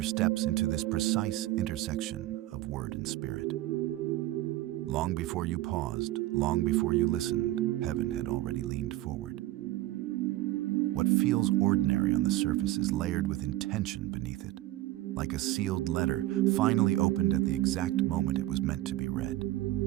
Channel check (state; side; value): quieter; left; 16.0 dB